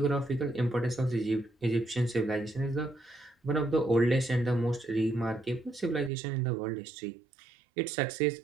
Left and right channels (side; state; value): left; drops out; at 6.1 s